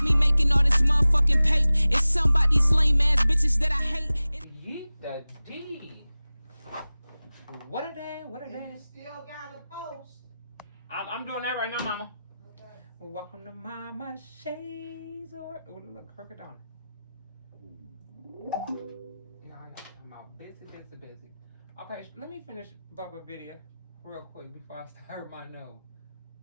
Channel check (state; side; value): inverted; both; correlation -0.97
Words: me making all this motherfucking paper. It's something about these lame ass bitches that I hate. Yeet the D. What are they? What are they? You still got a post. I'm doing that right now, mama. Okay. Welcome to Mama Shades or look, crooked down. Yeah, I'm out busy. Okay, let me finish Bubba video real quick before I start my nose.